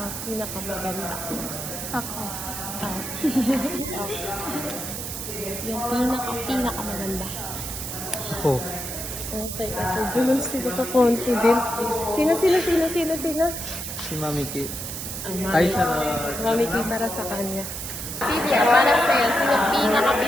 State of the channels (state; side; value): noise; right; hiss, 6 dB below the sound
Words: pinaka maganda. Ako. Ah. Yung pinaka maganda. Ako. Okay, ito dyan sila ka-confident. Sino? Si Mami K. Ay, Mami K para sa kanya. Silvia, para sa'yo, sino